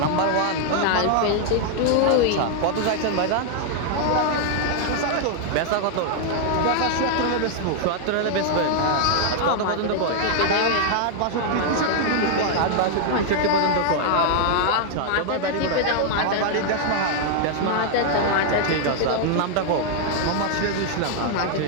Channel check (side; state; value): both; different; correlation 0.00